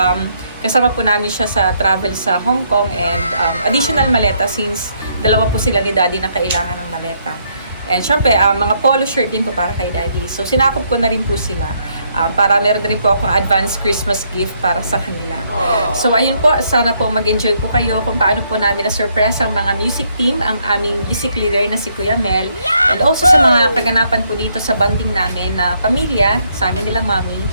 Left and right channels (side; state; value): both; inverted; correlation -0.72